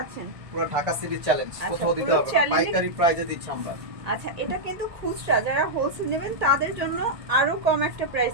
পুরো ঢাকা সিটি চ্যালেঞ্জ, কোথাও দিতে হবে না, পাইকারি প্রাইসে দিচ্ছি আমরা। আচ্ছা, এটা কিন্তু খুচরা, যারা হোলসেল নেবেন তাদের জন্য আরো কম একটা প্রাইস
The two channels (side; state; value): left; late; 1.8 ms